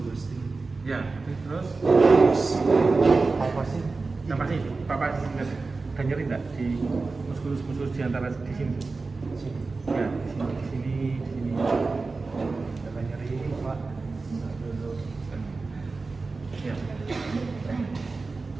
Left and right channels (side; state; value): left; quieter; 3.9 dB